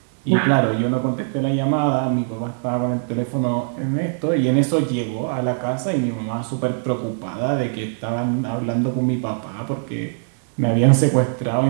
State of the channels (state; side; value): silent; left; 64 dB below the other